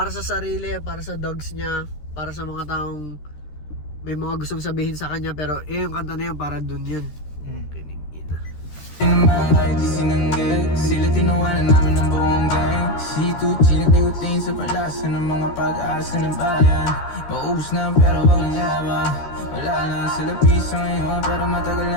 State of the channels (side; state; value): right; late; 13 ms